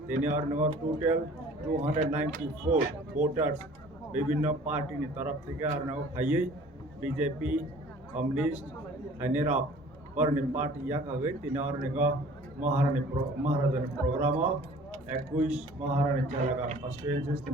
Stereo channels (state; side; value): normal; both; correlation 0.49